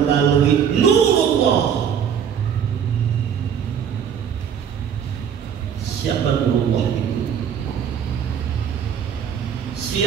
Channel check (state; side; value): quieter; left; 8.1 dB